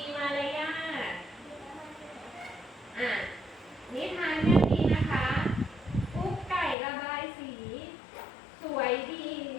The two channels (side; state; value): right; drops out; at 6.8 s